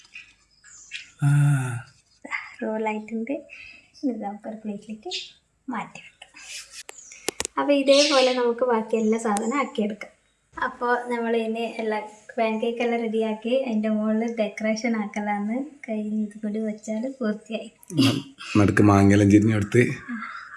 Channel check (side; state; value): both; identical; correlation 1.00